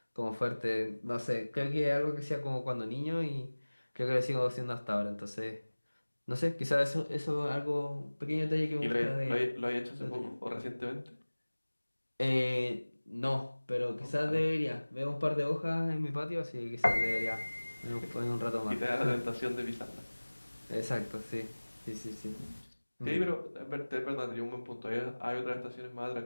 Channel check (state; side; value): inverted; both; correlation -1.00